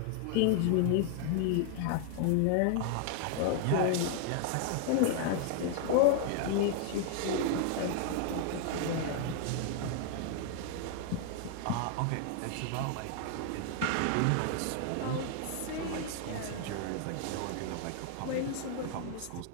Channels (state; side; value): different; both; correlation 0.00